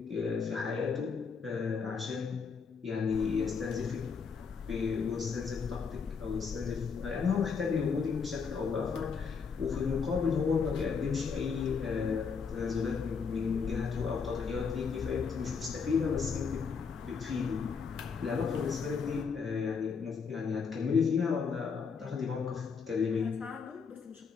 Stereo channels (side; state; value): right; quieter; 5.6 dB